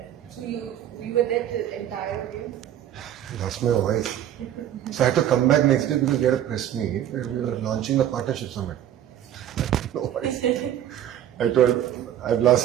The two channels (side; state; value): left; quieter; 11.1 dB